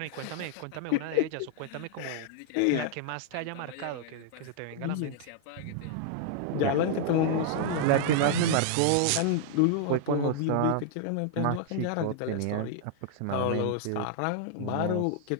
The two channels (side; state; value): both; different; correlation -0.01